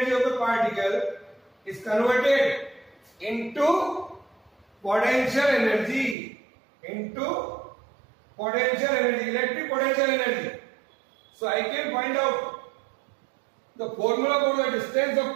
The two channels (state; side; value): drops out; left; at 6.2 s